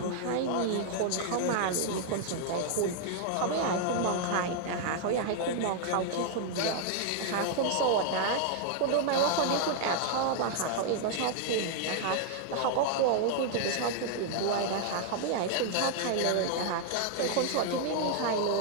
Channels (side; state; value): both; different; correlation 0.00